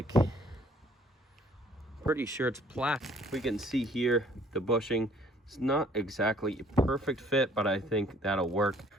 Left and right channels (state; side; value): normal; both; correlation 0.59